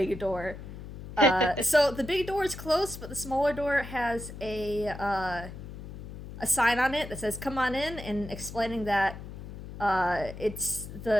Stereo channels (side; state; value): left; noise; hum, 11 dB below the sound